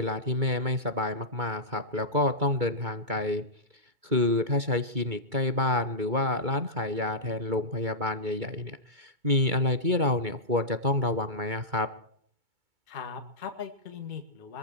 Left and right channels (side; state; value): left; late; 2.2 ms